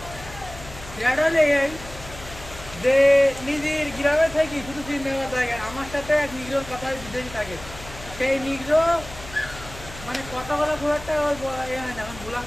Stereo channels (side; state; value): left; noise; hum, 15 dB below the sound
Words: এটা হলে এই যে নিজের গ্রামে থাকি শুধু সিনেমা থাকে, আমার সাথে এক নিগ্রোর কথা বিদেশি থাকে। সেই নিগ্রো মানে কথা বলা খুব একটা এ হয় না, এখন ব্ল্যাক